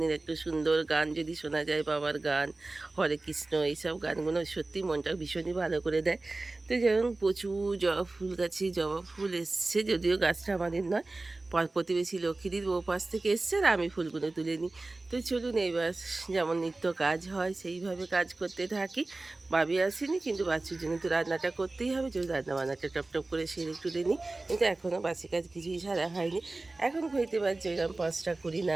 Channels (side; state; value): left; quieter; 3.2 dB